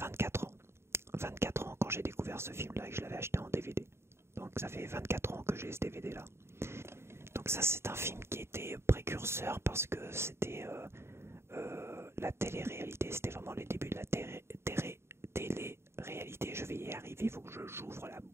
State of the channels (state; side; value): late; left; 0.12 ms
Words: ans. 24 ans quand j'ai découvert ce film-là et que je l'avais acheté en DVD. Donc ça fait 24 ans que j'ai ce DVD-là. Donc ça c'est un film qui était précurseur parce que c'était la télé-réalité, c'était vraiment les débuts de la télé-réalité. Je vais y arriver, il faut que j'ouvre la